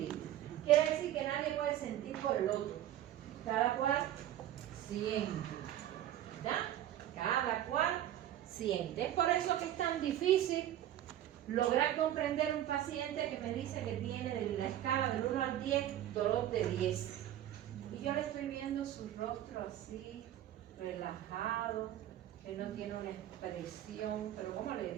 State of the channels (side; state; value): left; quieter; 12.3 dB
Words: Quiere decir que nadie puede sentir por el otro. Cada cual siente, ¿verdad? Cada cual siente. Es por eso que es tan difícil lograr comprender un paciente que me dice que tiene de la escala del 1 al 10, dolor de 10. Y yo le estoy viendo su rostro así, relajado, que no tiene una expresión, pero ¿cómo le